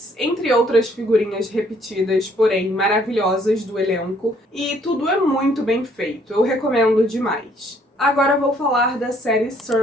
entre outras figurinhas repetidas, porém maravilhosas do elenco, e tudo é muito bem feito, eu recomendo demais. Agora vou falar da série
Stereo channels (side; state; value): both; normal; correlation 0.64